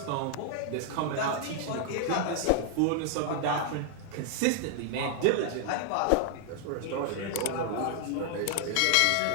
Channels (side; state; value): both; different; correlation 0.00